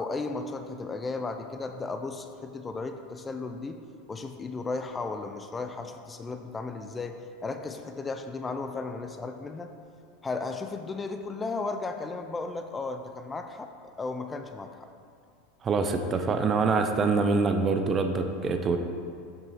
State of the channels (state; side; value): normal; both; correlation 0.60